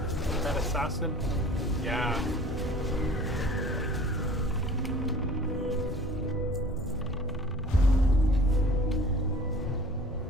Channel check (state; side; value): normal; both; correlation 0.46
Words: That assassin? Yeah.